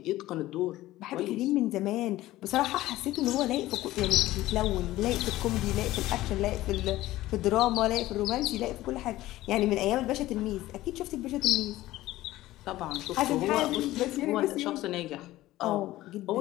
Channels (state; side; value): quieter; right; 16.3 dB